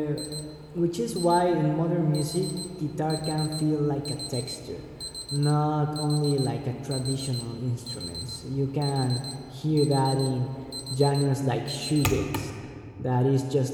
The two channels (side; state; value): both; identical; correlation 1.00